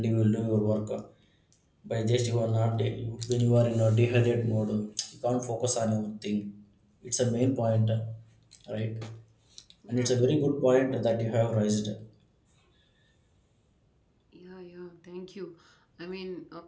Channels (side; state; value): both; identical; correlation 1.00